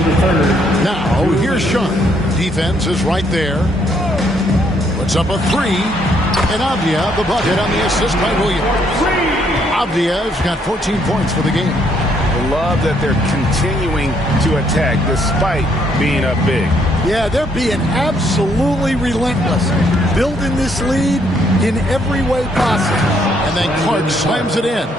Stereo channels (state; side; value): normal; both; correlation 0.70